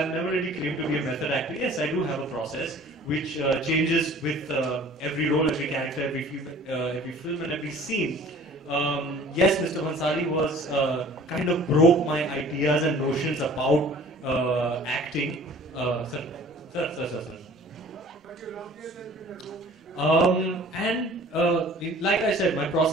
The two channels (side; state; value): both; normal; correlation 0.48